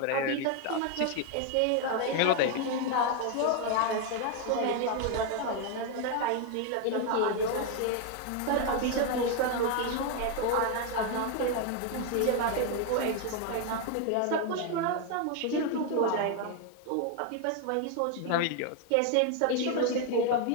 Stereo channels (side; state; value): both; different; correlation 0.01